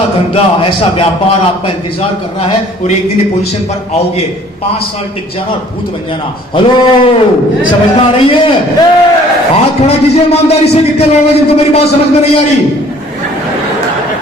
धंधा, ऐसा व्यापार आपका इंतजार कर रहा है, और एक दिन पोजीशन पर आओगे, 5 साल टिक जाना और भूत बन जाना। हेलो, समझ में आ रही है? हाथ खड़ा कीजिए ईमानदारी से, कितने लोग हैं जिनको मेरी बात समझ में नहीं आ रही।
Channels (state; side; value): normal; both; correlation 0.55